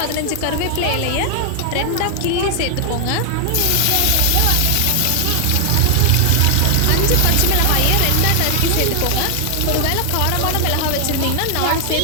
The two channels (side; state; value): both; different; correlation 0.00